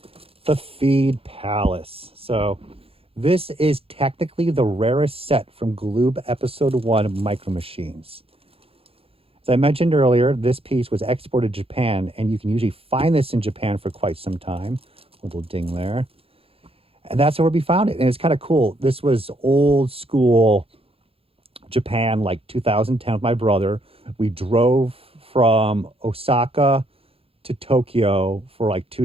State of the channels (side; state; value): left; late; 0.27 ms